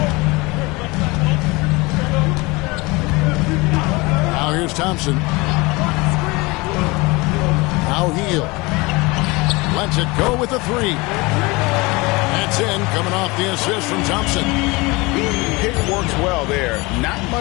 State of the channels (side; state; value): right; quieter; 24.3 dB